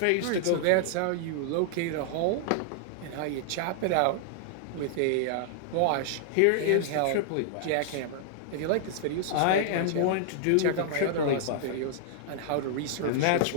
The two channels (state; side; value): different; both; correlation -0.01